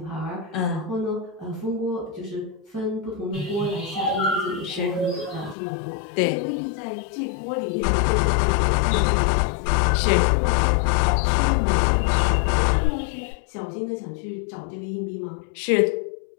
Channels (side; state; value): right; drops out; at 5.6 s